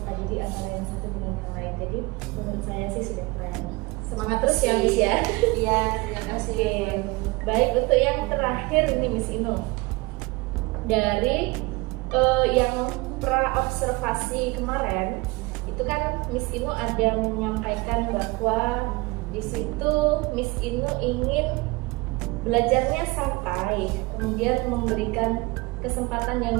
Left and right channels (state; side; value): quieter; left; 24.2 dB